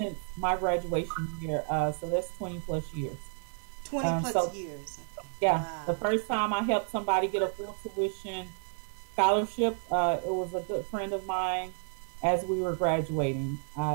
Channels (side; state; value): left; silent; 57 dB below the other